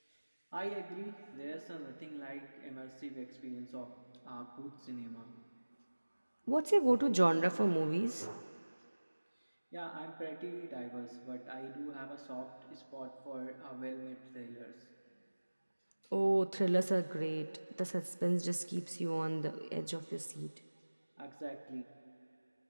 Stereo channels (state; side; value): inverted; both; correlation -1.00